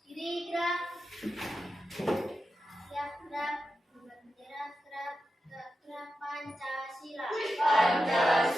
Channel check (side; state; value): both; normal; correlation 0.90